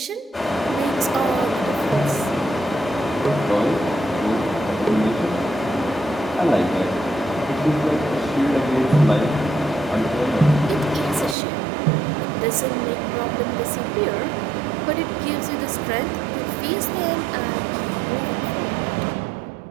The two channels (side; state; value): left; drops out; at 11.4 s